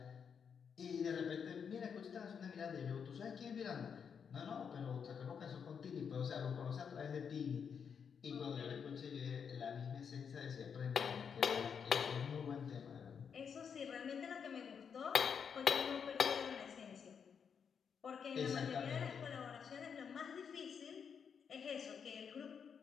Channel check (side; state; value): right; quieter; 6.9 dB